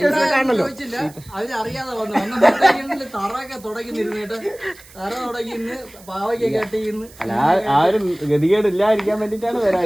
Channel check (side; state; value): right; noise; hiss, 22 dB below the sound